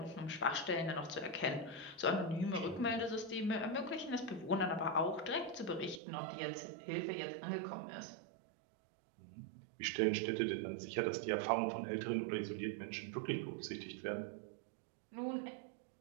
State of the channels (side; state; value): left; drops out; at 6.0 s